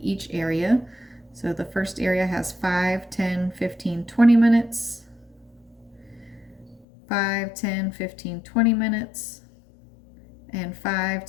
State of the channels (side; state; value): right; drops out; at 6.9 s